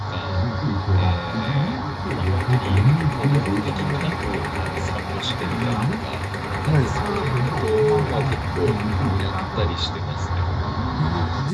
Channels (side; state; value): both; identical; correlation 1.00